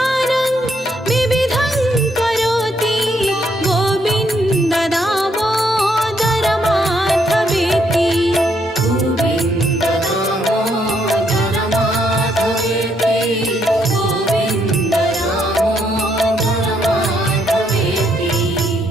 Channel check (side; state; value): both; normal; correlation 0.73